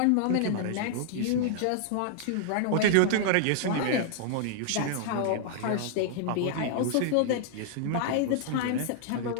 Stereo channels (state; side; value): different; both; correlation -0.01